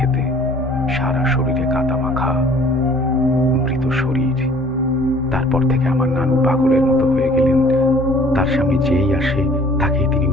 সারা শরীরে কাদা মাখা মৃত শরীর। তারপর থেকে আমার নানু পাগলের মতো হয়ে গেলেন। তার সামনে যেই আসে তাকেই তিনি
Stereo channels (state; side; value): normal; both; correlation 0.54